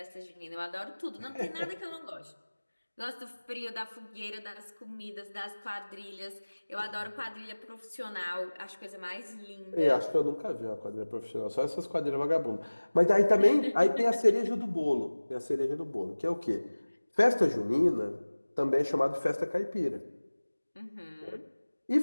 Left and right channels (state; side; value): inverted; both; correlation -1.00